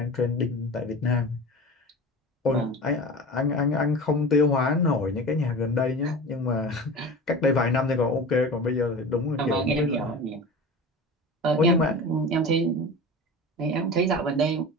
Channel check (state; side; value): normal; both; correlation 0.33